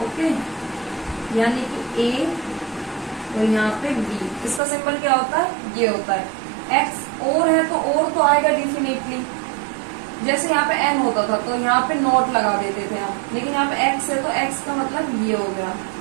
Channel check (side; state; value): left; drops out; at 4.6 s